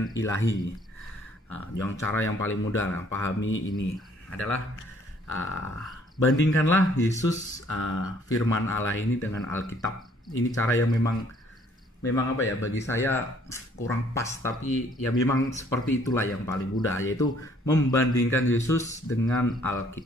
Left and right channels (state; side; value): normal; both; correlation 0.61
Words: ilahi. Yang cara yang paling mudah pahami ini adalah bandingkanlah Yesus firman Allah ini dengan Alkitab. Ini cara yang memang bagi saya kurang pas, tapi ya memang seperti itulah yang paling mudah, yaitu membandingkan Yesus dengan